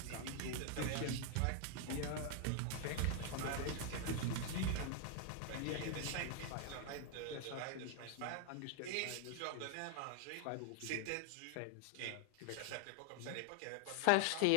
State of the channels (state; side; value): different; both; correlation 0.00